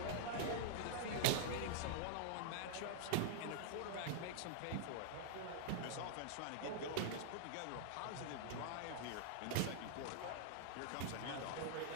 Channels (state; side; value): different; both; correlation -0.02